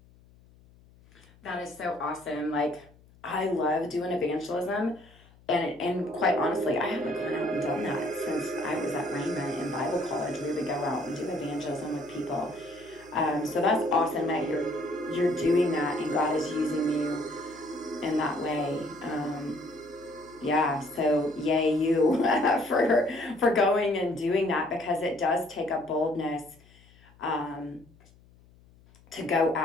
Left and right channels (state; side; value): noise; left; hum, 27 dB below the sound